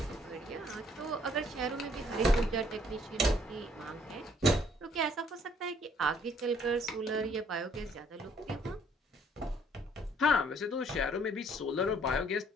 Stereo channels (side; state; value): both; normal; correlation 0.63